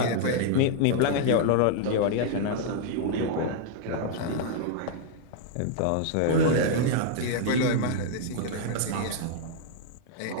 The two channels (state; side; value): different; both; correlation -0.01